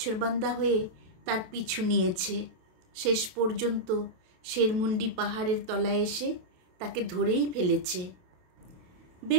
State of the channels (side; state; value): left; late; 28 ms